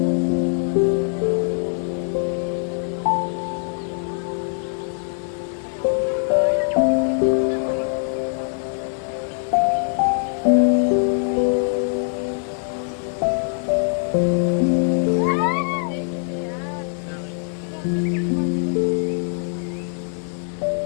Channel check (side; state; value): right; silent; digital silence